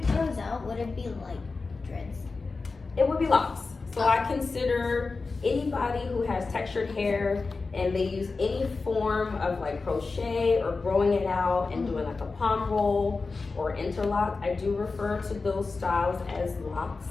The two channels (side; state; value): right; quieter; 4.1 dB